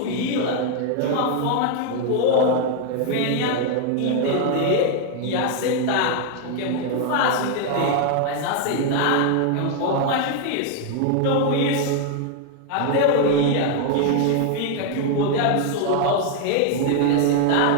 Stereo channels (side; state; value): both; different; correlation 0.00